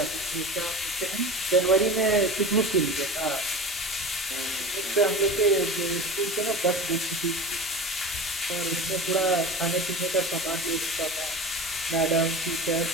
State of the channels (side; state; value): both; normal; correlation 0.31